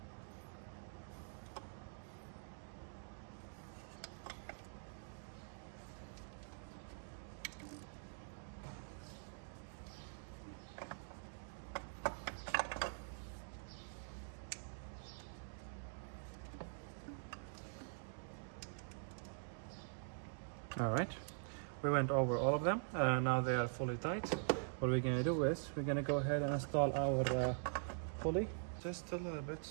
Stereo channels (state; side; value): silent; left; digital silence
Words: All right, we went over all of them. Now they are fully tight. What we're gonna do is we're gonna go ahead and install our pulley just a little